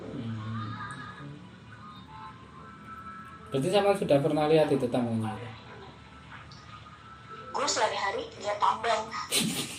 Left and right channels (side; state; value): both; identical; correlation 1.00